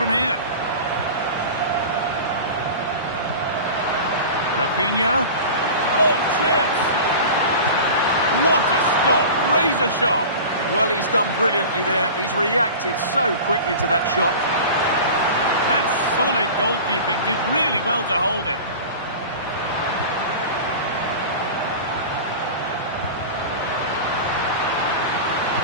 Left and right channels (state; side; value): inverted; both; correlation -0.34